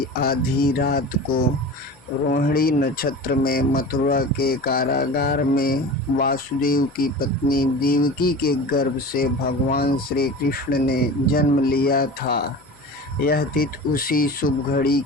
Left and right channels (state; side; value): noise; left; hum, 30 dB below the sound